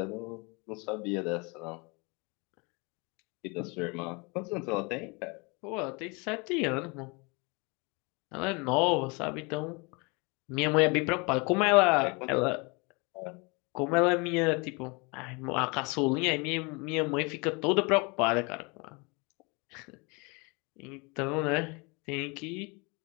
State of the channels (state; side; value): quieter; right; 29.3 dB